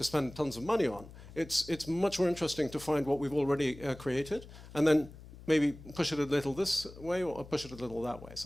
spend tons of money on. It's much more interesting to find what we've already created and then maybe push it a little this way or push it a little that way.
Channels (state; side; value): noise; left; hum, 17 dB below the sound